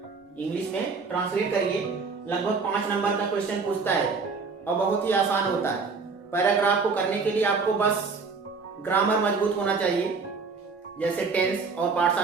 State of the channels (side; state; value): left; quieter; 4.7 dB